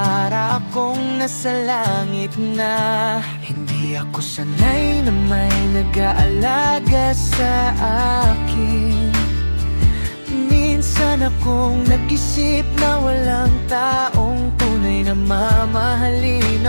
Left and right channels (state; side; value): inverted; both; correlation -1.00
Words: akong nasa langit na. Hindi ako sanay na may nag-aalaga sa akin. Minsan akong nag-isip na walang taong tunay na mamahalin